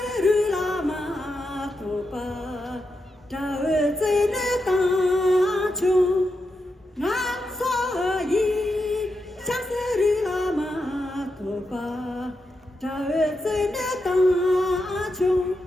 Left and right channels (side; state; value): both; normal; correlation 0.86